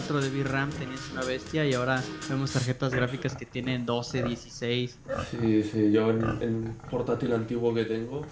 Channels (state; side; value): identical; both; correlation 1.00